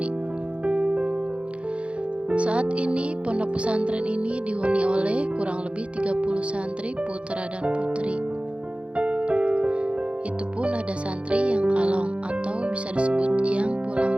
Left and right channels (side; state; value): left; late; 0.060 ms